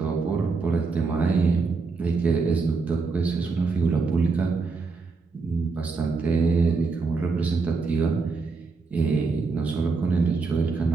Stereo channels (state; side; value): quieter; left; 4.4 dB